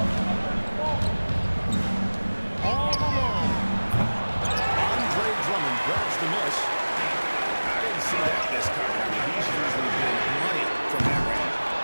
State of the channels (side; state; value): both; inverted; correlation -1.00